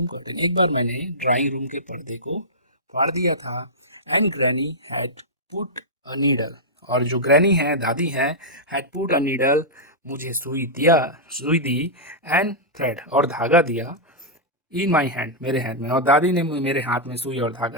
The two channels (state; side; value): normal; both; correlation -0.10